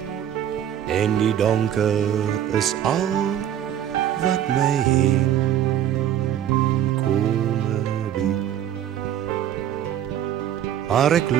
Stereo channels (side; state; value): left; quieter; 10.7 dB